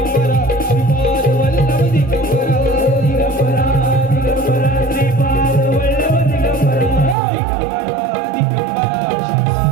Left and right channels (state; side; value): drops out; left; at 7.2 s